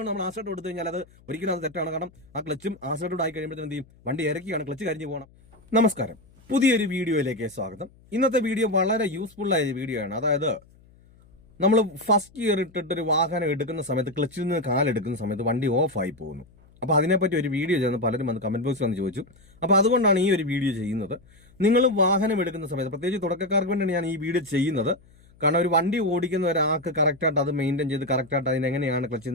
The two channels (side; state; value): left; noise; hum, 27 dB below the sound